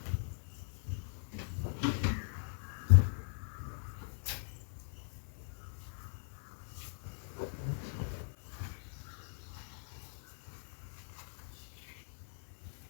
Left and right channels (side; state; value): right; silent; 51 dB below the other